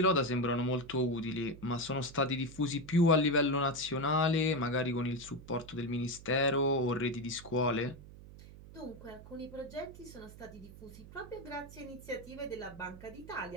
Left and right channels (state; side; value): noise; right; hum, 17 dB below the sound